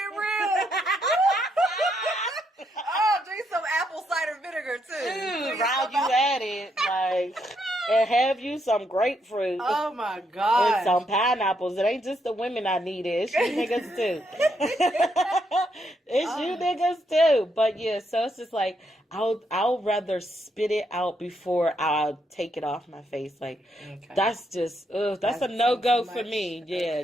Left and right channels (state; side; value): normal; both; correlation 0.77